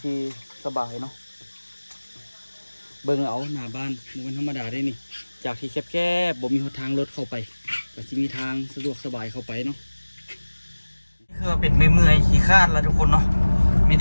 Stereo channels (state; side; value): inverted; both; correlation -1.00